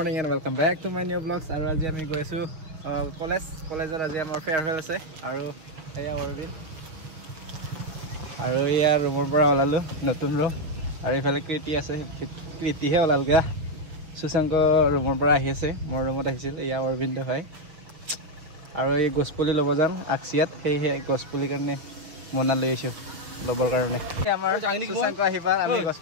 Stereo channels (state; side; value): late; left; 6.1 ms